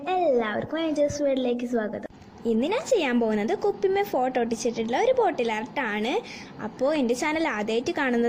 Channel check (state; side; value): identical; both; correlation 1.00